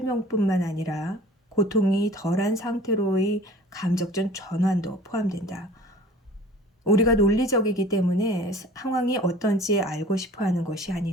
아니라 고통이 덜한 상태로의 감정적 전환도 포함된다. 우리가 논리적이기 때문에 상황이 어떤지 알고 싶어 하는 것이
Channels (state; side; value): normal; both; correlation 0.46